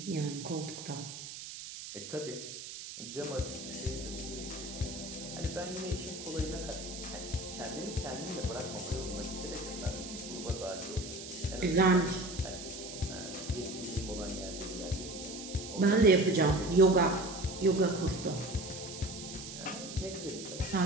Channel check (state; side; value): noise; right; hiss, 10 dB below the sound